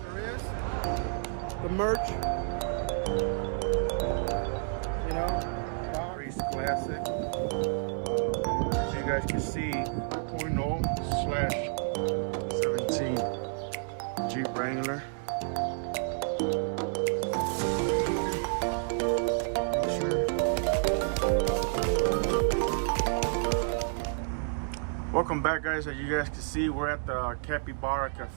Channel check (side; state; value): left; silent; digital silence